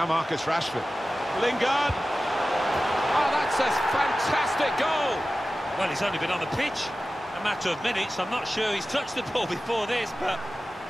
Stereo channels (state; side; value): normal; both; correlation 0.95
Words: Marcus Rashford. Lingard. Oh, that's a fantastic goal. Well, he's only been on the pitch a matter of minutes. I'm not sure he's touched the ball before this, but